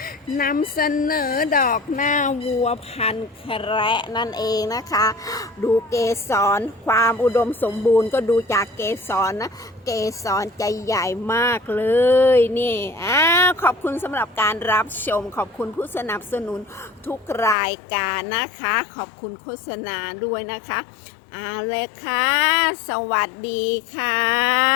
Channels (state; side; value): drops out; right; at 17.6 s